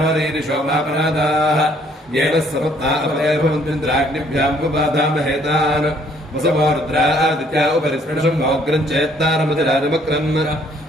మాపరాదాః येन सपत्ना अपरेभवन्त्रिन्द्राग्निभ्यां उपबाधामहेतान् वसवो रुद्रादित्या उपरिस्पृशं मोग्रं चेत्तारमतिराजमक्रन्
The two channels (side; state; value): both; normal; correlation 0.63